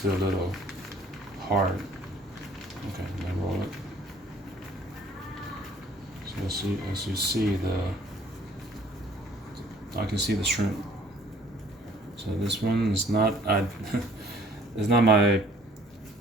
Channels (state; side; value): normal; both; correlation 0.56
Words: a little hard. Okay, then roll it. So as you see I can see the shrimp. So this one is not it's not my